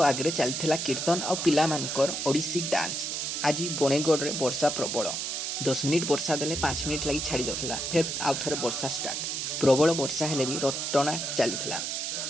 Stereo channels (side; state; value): right; noise; hiss, 2 dB below the sound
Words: आगे चलथिला कीर्तन आ पिला मानकर ओडिसी डांस। आज बणेगड़ रे वर्षा प्रबल 10 मिनिट वर्षा देले 5 मिनिट लगी छाड़ी जाउथला फिर आउ थरे वर्षा स्टार्ट। प्रबल वर्षा हेले भी रथ टଣା चलीथिला।